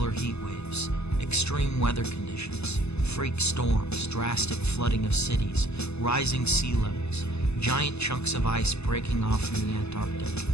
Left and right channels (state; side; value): late; right; 0.80 ms